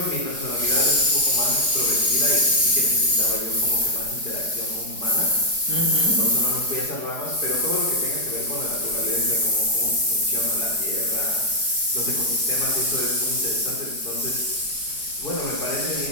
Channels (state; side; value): late; left; 4.8 ms